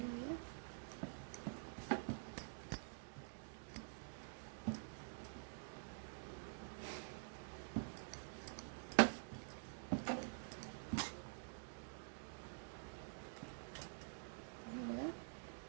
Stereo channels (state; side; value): silent; left; digital silence